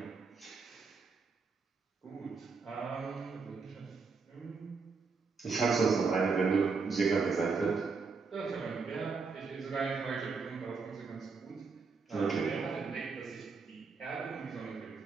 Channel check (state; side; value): quieter; left; 4.8 dB